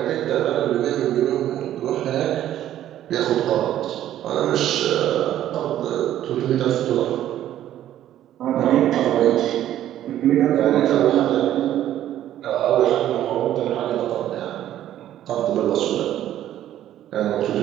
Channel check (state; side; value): quieter; left; 12.2 dB